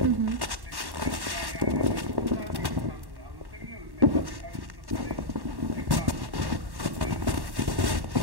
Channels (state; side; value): late; left; 1.1 ms